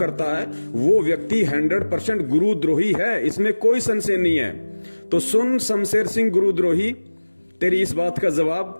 है। वो व्यक्ति 100% गुरुद्रोही है, इसमें कोई संशय नहीं है। तो सुन शमशेर सिंह गुरुद्रोही, तेरी इस बात का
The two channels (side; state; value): both; inverted; correlation -1.00